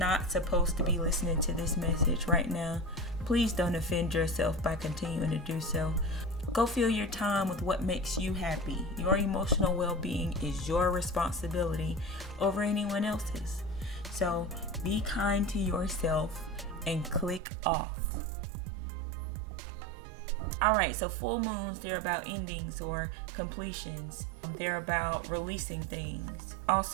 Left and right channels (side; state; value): left; drops out; at 17.4 s